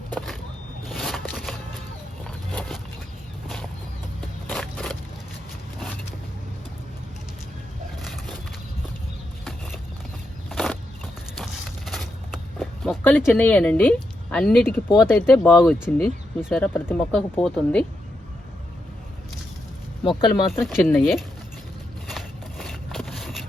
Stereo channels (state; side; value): normal; both; correlation 0.83